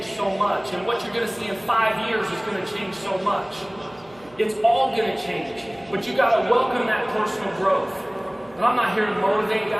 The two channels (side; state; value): right; noise; hum, 26 dB below the sound